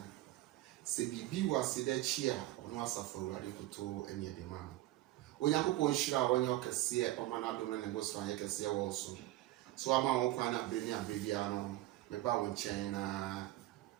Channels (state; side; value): quieter; left; 16.4 dB